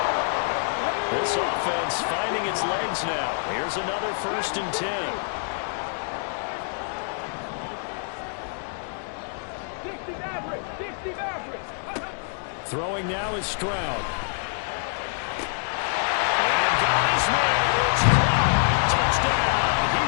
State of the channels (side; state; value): right; silent; 61 dB below the other